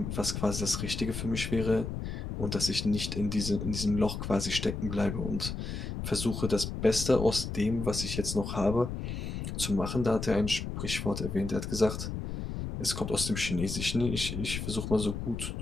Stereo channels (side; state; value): left; noise; rumble, 5 dB below the sound